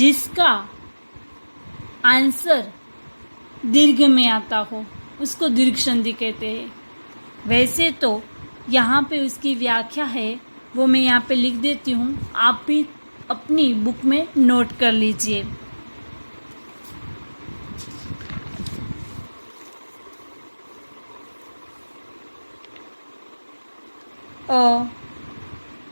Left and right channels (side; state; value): both; inverted; correlation -1.00